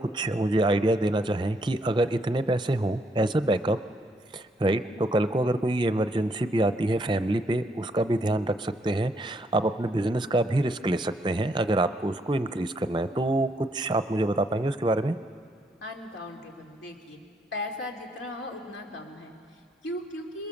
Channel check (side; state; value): both; normal; correlation 0.73